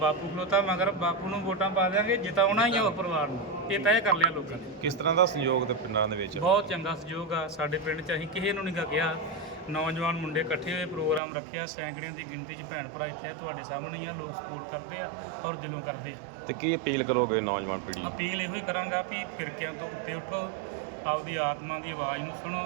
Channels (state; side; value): drops out; left; at 11.2 s